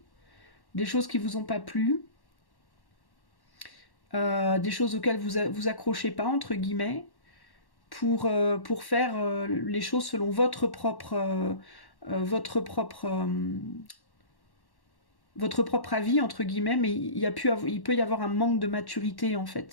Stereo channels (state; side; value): late; right; 1.1 ms